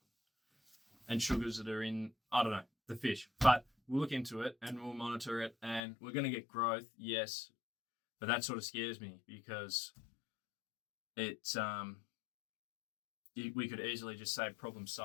and sugars that are in, the fish. But we'll look into it and we'll monitor it, and we're going to get growth, yes. But that sort of scares me, because it's we could easily just say problem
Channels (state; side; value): drops out; right; at 5.8 s